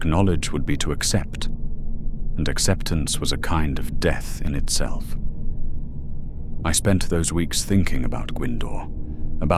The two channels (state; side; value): identical; both; correlation 1.00